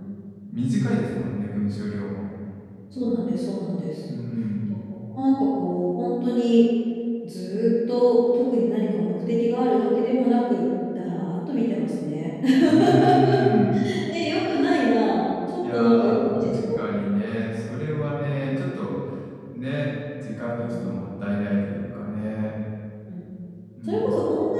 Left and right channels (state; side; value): identical; both; correlation 1.00